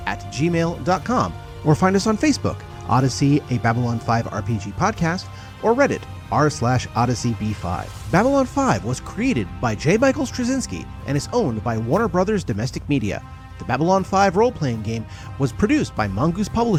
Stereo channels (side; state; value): both; identical; correlation 1.00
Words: or find us on Facebook, Odyssey, a Babylon 5 RPG podcast, or Reddit, r/OdysseyB5. Babylon 5 was created by J. Michael Straczynski and is owned by Warner Brothers Domestic Media. The Babylon 5 role-playing game was produced by Mongoose